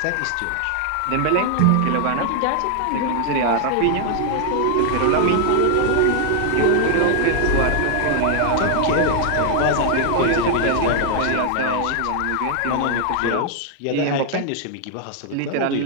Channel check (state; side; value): different; both; correlation 0.00